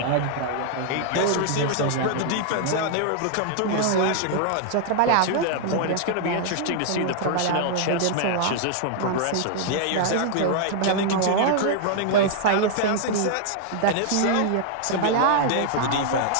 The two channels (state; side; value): different; both; correlation 0.00